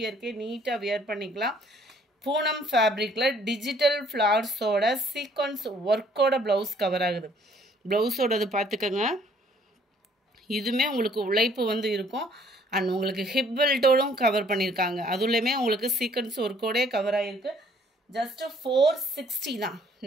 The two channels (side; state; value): both; normal; correlation 0.61